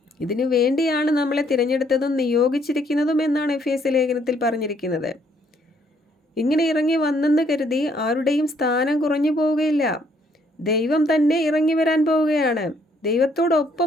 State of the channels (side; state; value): both; normal; correlation 0.67